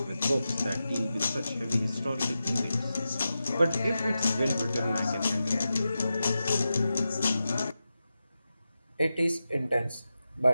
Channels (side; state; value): both; inverted; correlation -0.91